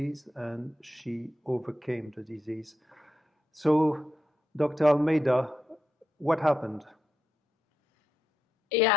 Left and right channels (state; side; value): normal; both; correlation 0.85